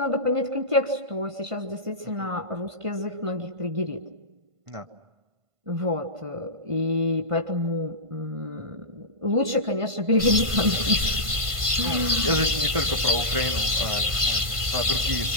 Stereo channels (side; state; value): left; late; 1.5 ms